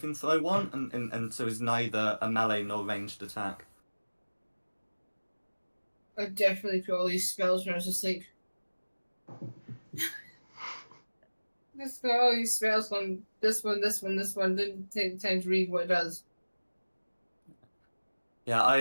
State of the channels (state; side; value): inverted; both; correlation -1.00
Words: throw one, and so is neither a melee nor ranged attack. I definitely put all these spells when I was asleep. Just got all these spells on this one, this one, this one. Didn't take the time to read what it does. Yeah,